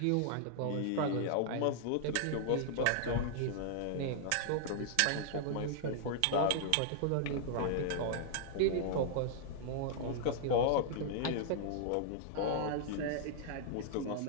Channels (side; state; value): both; different; correlation -0.01